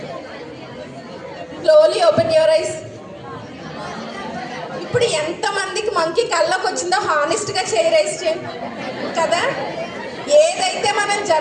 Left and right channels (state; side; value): identical; both; correlation 1.00